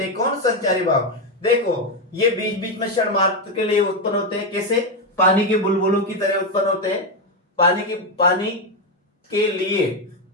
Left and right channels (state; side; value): normal; both; correlation 0.07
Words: हैं। कौन संचारी भाव, देखो ये बीच बीच में क्षण मात्र के लिए उत्पन्न होते हैं। कैसे, पानी के बुलबुलों की तरह उत्पन्न होते हैं। पानी के